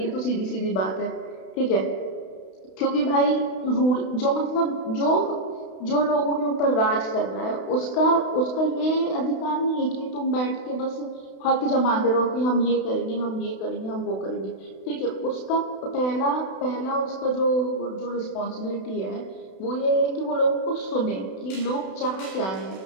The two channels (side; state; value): right; late; 32 ms